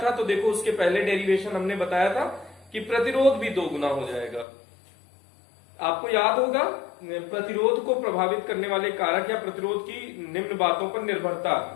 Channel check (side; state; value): right; drops out; at 4.5 s